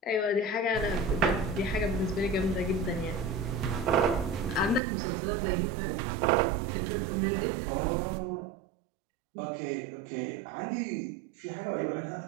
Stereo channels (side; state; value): left; drops out; at 4.8 s